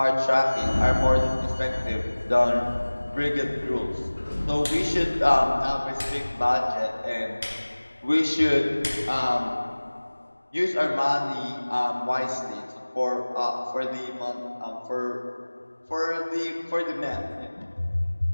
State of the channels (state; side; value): inverted; both; correlation -1.00